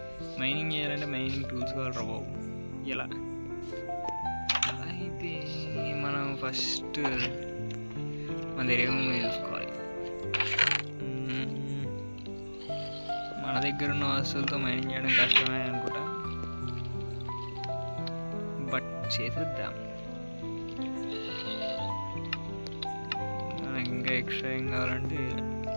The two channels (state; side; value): inverted; both; correlation -1.00